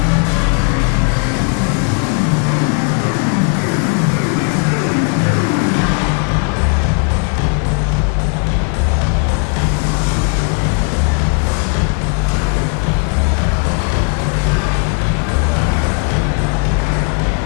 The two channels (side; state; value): right; quieter; 36.5 dB